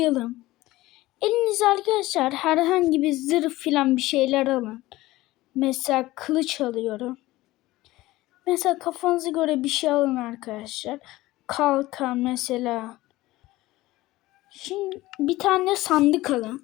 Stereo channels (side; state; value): right; quieter; 17.9 dB